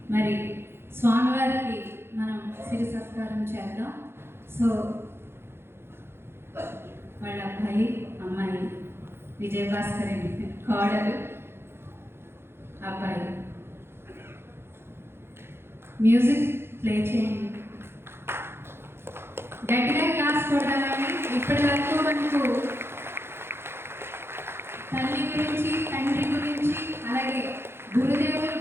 మరి స్వామివారికి మనం సిరి సత్కారం చేద్దాం. సో వాళ్ళ అబ్బాయి అమ్మాయి విజయభాస్కర్ అండి, కోడలు అబ్బాయి. మ్యూజిక్ ప్లే చేయండి, గట్టిగా క్లాస్ కొడదామని. ఇప్పటి వరకు మనకు తల్లి గురించి, తండ్రి గురించి, అలాగే గురుదేవులు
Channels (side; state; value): left; late; 0.11 ms